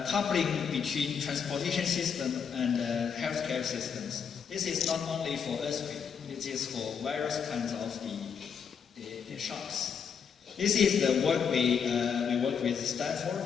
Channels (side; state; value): right; quieter; 6.9 dB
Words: coupling between transportation system and healthcare systems. This is not only for earthquake, it is for various kinds of the shocks. This is the work we work with